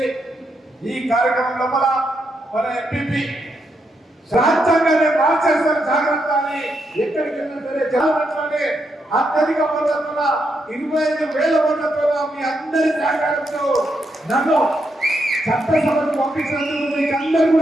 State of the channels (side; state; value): both; normal; correlation 0.81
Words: ఈ కార్యక్రమం లోపల మన ఎంపీ రాజ్యాంగాన్ని మార్చేస్తారు జాగ్రత్త అని ఎక్కడికి వెళ్ళినా సరే జనాలలోనే అత్యధిక ఓట్లతో 25,000 ఓట్లతో మీ అందరి సహకారంతో నన్ను చట్టసభకు పంపించినందుకు మీకు అందరూ